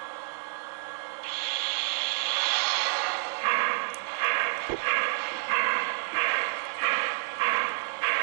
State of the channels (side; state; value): left; silent; 59 dB below the other